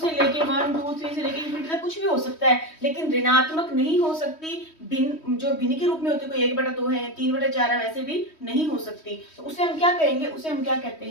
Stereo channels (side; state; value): right; late; 3.1 ms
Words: लेके 1 2 3 से लेके इंफिनिटी तक कुछ भी हो सकता है, लेकिन ऋणात्मक नहीं हो सकती। भिन्न जो भिन्न के रूप में होती है, कोई 1/2 है, 3/4 है, वैसे भी नहीं हो सकती। तो उसे हम क्या कहेंगे, उसे हम क्या कहते